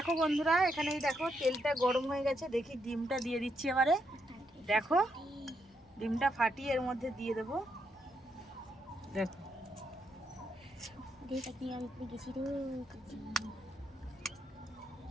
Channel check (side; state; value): both; normal; correlation 0.79